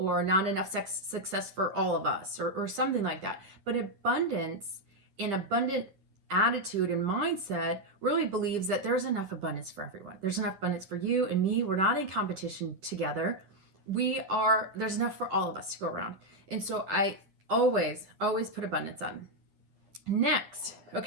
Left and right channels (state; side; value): late; left; 10 ms